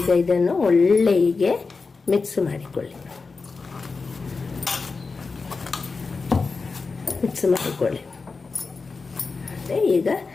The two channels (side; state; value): right; quieter; 4.3 dB